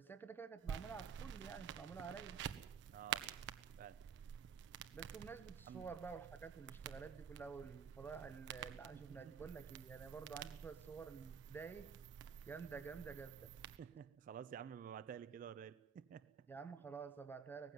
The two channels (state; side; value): quieter; left; 7.1 dB